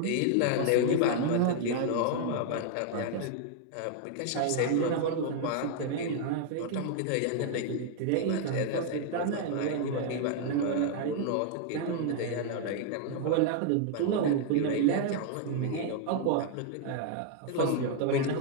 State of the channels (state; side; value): different; both; correlation 0.00